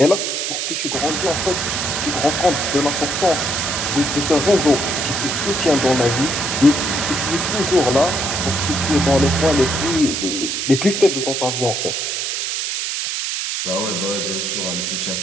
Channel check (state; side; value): noise; right; hiss, 2 dB below the sound